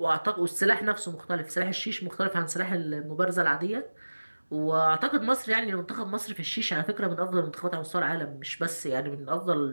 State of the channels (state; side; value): inverted; both; correlation -1.00